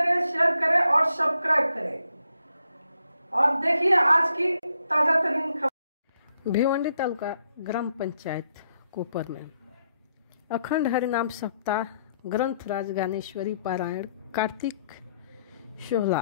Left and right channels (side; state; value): both; inverted; correlation -0.76